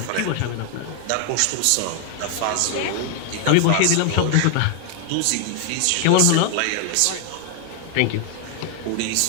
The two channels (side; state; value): both; different; correlation 0.00